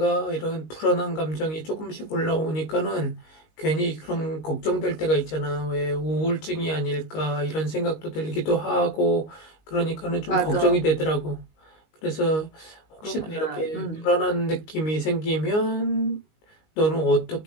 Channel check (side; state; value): right; late; 19 ms